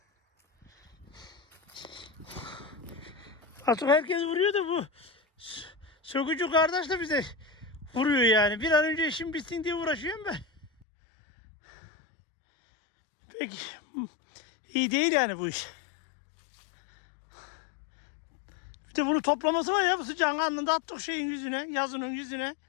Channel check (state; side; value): drops out; right; at 10.9 s